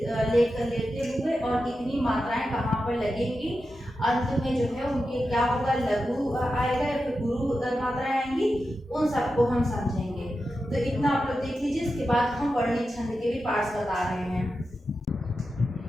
हुए और कितनी मात्राएं कहाँ पर लगेंगी, अंत में जो है उनके क्या होगा, लघु आएगा या फिर गुरु मात्राएं आएंगी, उन सबको हम समझेंगे। तो इतना आप लोग देख लीजिए। इसके बाद हम वर्णिक छंद के भी पार्ट्स बता रहे हैं।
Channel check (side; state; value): both; normal; correlation 0.90